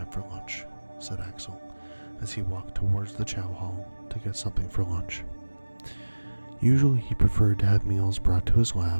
for lunch, said Axel as he walked towards the chow hall to get something for lunch. Usually he preferred to have meals brought to his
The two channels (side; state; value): both; inverted; correlation -1.00